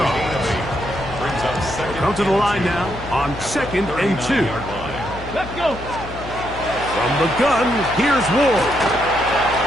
Come to the line now on 2nd and 2. Let's go. From the gun, here's Ward.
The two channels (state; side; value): noise; left; hum, 13 dB below the sound